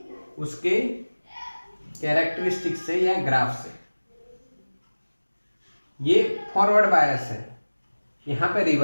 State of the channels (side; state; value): both; inverted; correlation -1.00